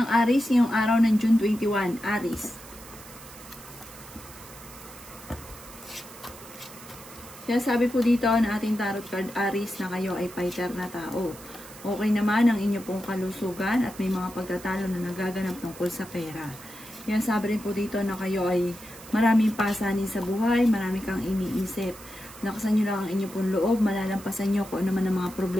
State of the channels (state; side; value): noise; right; hiss, 18 dB below the sound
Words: Aries ngayong araw ng June 21. Aries. Kaya sabi po dito na ating tarot card Aries na kayo ay fighter na tao. Okay naman ang inyo pong kalusugan at may mga pagtatalo na nagaganap tungkol sa pera. Kaya sabi rin po dito na kayo ay maraming pasanin sa buhay, marami kang iniisip. Lakasan nyo lang ang inyo pong loob, malalampasan nyo kung ano man ang mga